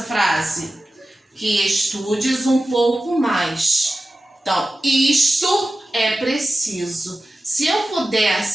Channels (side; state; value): both; normal; correlation 0.95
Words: frase? Que estudes um pouco mais. Então, isto é preciso. Se eu puder